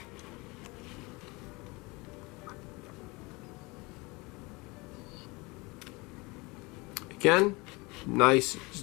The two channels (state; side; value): quieter; right; 25.2 dB